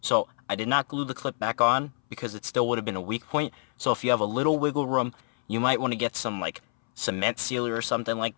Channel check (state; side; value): silent; right; 60 dB below the other